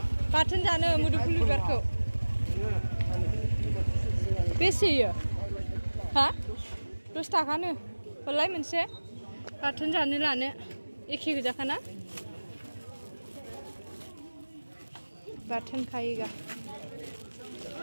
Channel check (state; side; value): inverted; both; correlation -1.00